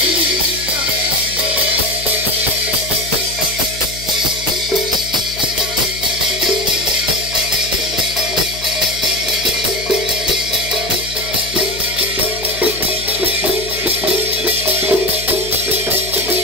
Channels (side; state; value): left; noise; hum, 13 dB below the sound